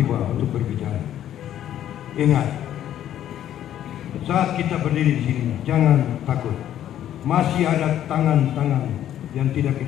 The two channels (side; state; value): right; quieter; 11.3 dB